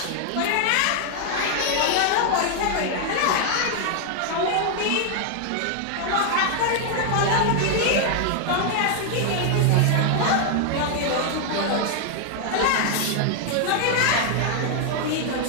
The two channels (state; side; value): different; both; correlation 0.00